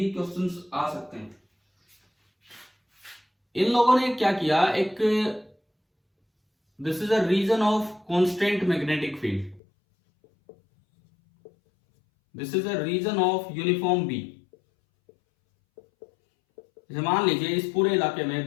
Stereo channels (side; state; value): right; drops out; at 9.6 s